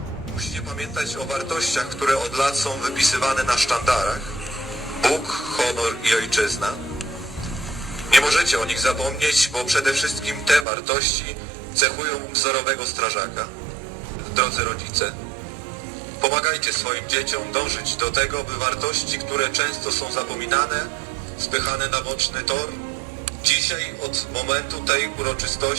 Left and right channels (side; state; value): left; drops out; at 10.7 s